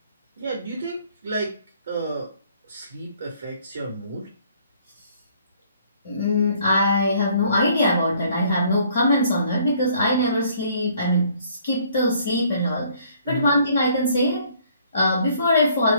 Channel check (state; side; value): inverted; both; correlation -0.61